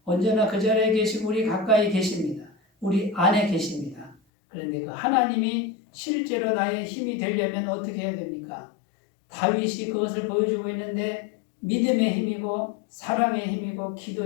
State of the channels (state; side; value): drops out; right; at 4.2 s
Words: 언제나 그 자리에 계시고 우리 가까이 계십니다. 우리 안에 계십니다. 그런데 그 하나님이 실제로 나의 힘이 되려면 어떻게 해야 됩니까? 다윗이 그것을 보여주고 있는데 믿음의 힘이고 사랑의 힘이고